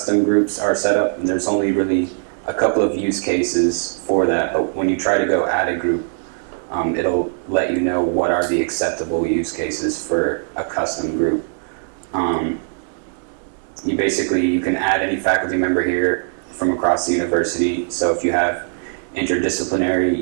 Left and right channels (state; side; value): silent; left; 64 dB below the other